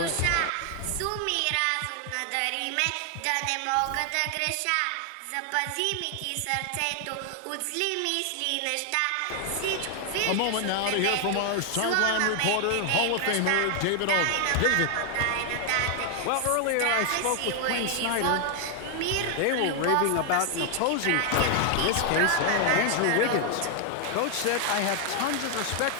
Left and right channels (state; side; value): different; both; correlation 0.00